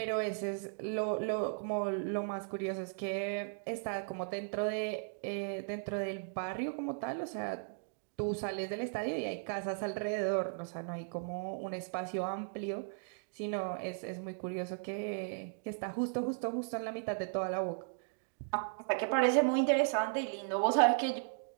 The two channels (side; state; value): left; silent; digital silence